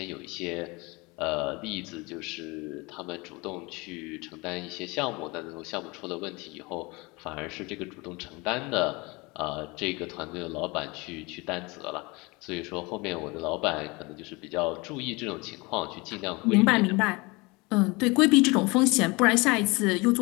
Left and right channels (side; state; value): right; quieter; 25.7 dB